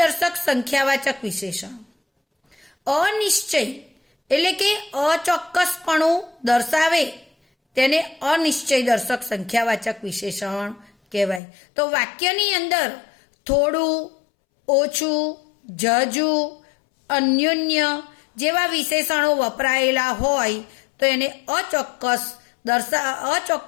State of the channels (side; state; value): right; drops out; at 11.4 s